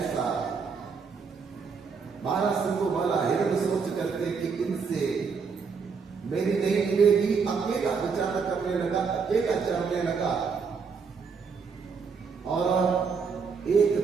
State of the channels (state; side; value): quieter; left; 5.5 dB